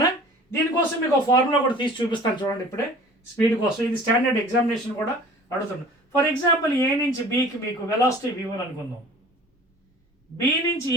దీనికోసం మీకు ఒక ఫార్ములా కూడా తీసి చూపిస్తాను చూడండి ఇప్పుడే, స్పీడ్ కోసం. ఇది స్టాండర్డ్ ఎగ్జామినేషన్ కూడా అడుగుతున్నాను. ఫర్ ఎగ్జాంపుల్ ఏ నుంచి బీకి మీకు వెలాసిటీ v1 అనుకుందాం, బి నుంచి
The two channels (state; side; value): normal; both; correlation 0.46